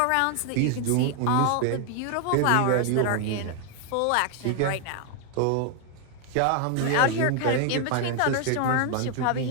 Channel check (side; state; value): both; different; correlation 0.00